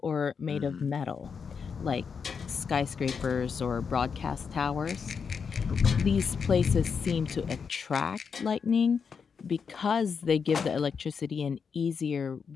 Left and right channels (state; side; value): quieter; right; 6.0 dB